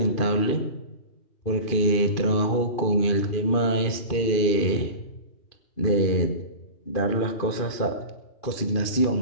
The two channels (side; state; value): right; late; 2.5 ms